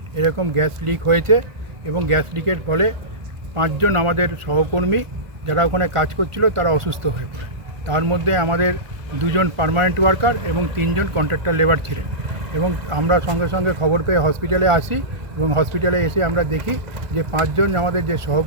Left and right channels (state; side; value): late; left; 1.4 ms